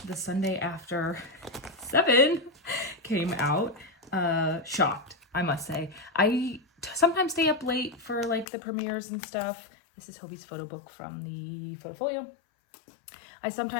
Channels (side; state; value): right; drops out; at 8.5 s